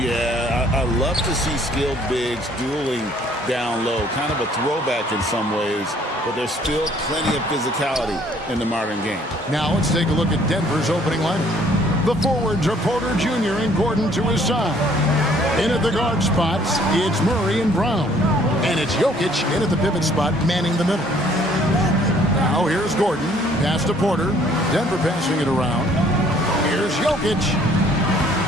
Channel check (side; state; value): both; normal; correlation 0.60